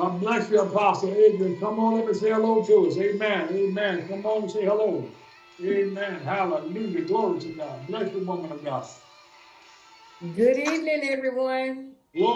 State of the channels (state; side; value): identical; both; correlation 1.00